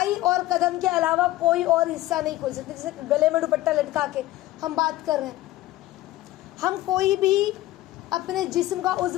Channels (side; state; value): right; quieter; 16.3 dB